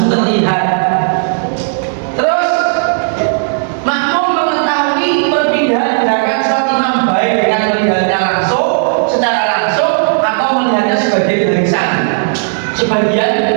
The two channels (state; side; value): silent; left; digital silence